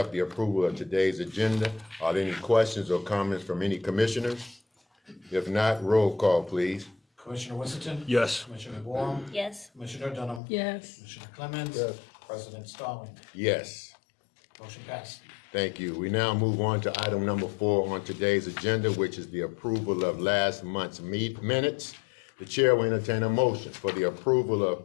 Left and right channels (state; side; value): drops out; right; at 10.4 s